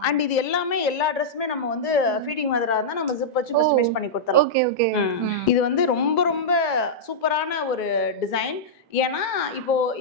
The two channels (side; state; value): both; normal; correlation -0.09